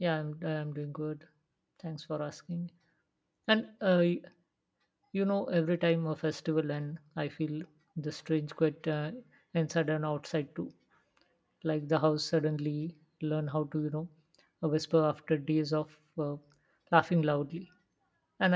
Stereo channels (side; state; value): both; identical; correlation 1.00